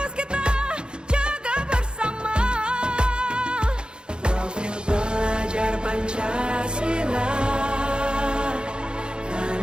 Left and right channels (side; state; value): left; late; 0.050 ms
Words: kita jaga bersama. Profil pelajar Pancasila